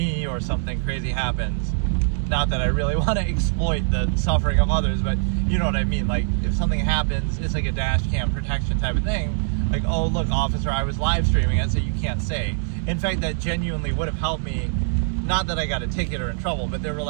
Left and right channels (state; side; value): silent; left; digital silence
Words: or something crazy happens. Not that I really want to exploit the suffering of others, but you know what I mean. If something happens, it's a dash cam protection type of thing. Oh, look, officer, I was live streaming it, so you can't say. In fact, that genuinely would have helped me. Not that I got a ticket or in trouble, but there were